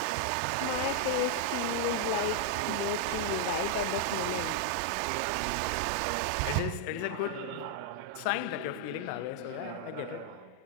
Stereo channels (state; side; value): different; both; correlation -0.01